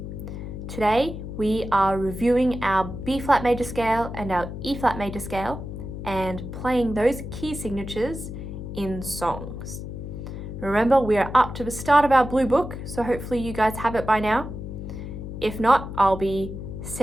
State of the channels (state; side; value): noise; left; hum, 8 dB below the sound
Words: Today we are reviewing our B-flat major scale and our E-flat major scale and playing those key signatures in songs. Remember, we are up to the start of our blue book, so hopefully you guys have it by now. If not, I'll be